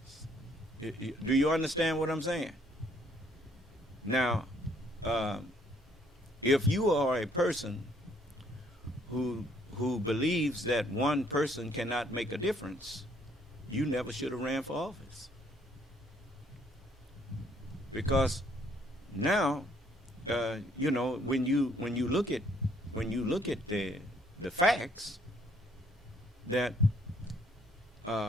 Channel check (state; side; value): normal; both; correlation 0.66